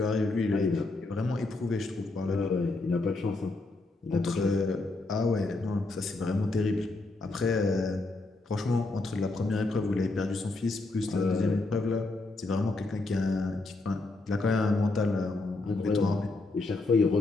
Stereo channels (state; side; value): quieter; right; 3.2 dB